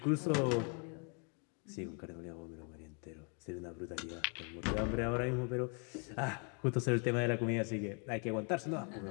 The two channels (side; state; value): right; quieter; 38.7 dB